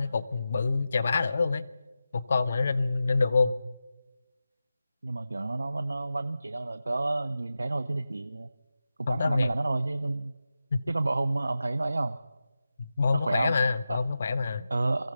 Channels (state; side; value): inverted; both; correlation -0.92